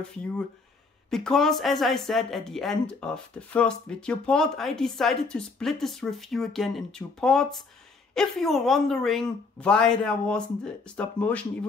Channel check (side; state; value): right; quieter; 4.2 dB